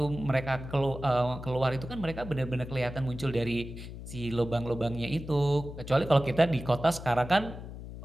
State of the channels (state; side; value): noise; left; hum, 11 dB below the sound